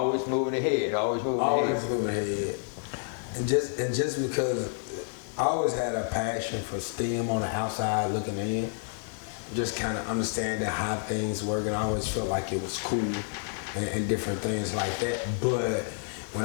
moving ahead, always moving ahead. And just because I always had a passion for STEM on the outside looking in, just kind of understanding how things work, and I always felt like it was cool and different things like that. But when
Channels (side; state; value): right; silent; 58 dB below the other